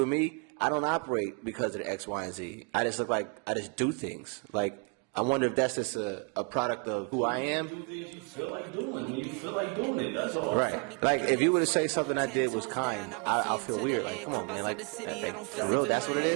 me, I don't operate because of the X, Y, and Z. I just look like I just do things. Like, I wonder if that's just a product of who I am. Do things you feel like doing when you feel like doing it. That's all. Right. Like, if you were to say something I did was kind, I'll feel weird. Like, come on, man. Like, for real, that's what it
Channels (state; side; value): quieter; left; 33.6 dB